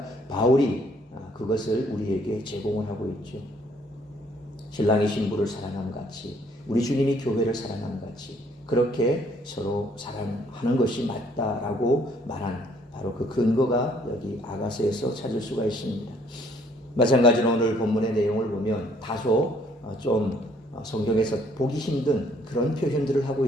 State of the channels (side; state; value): both; normal; correlation 0.64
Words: 바울이 그것을 우리에게 제공을 하고 있죠. 신랑이 신부를 사랑함 같이 우리 주님이 교회를 사랑함 같이 그렇게 서로 사랑하는 것이 맞다라고 말한 바로 그 근거가 여기 아가서에서 찾을 수가 있습니다. 마찬가지로 오늘 본문의 내용을 보면 다소 좀 성경에서 보기 힘든 그런 표현들을 하고